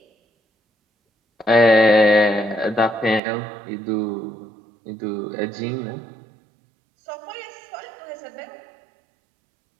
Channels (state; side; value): drops out; left; at 3.2 s